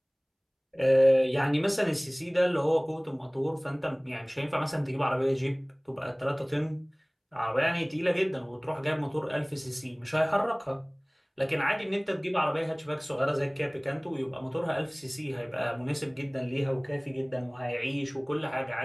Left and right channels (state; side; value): identical; both; correlation 1.00